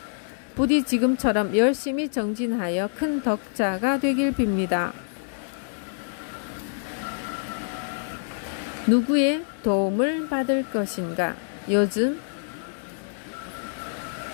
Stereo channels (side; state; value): right; silent; digital silence